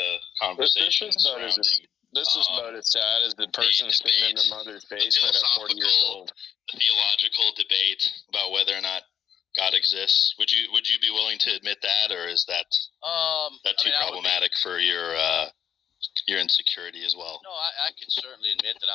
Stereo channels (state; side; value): quieter; right; 9.0 dB